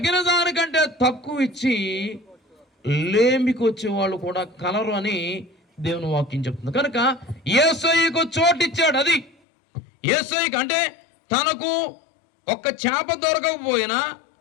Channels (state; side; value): drops out; right; at 9.3 s